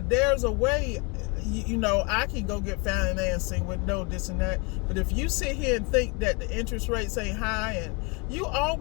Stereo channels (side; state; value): right; quieter; 30.4 dB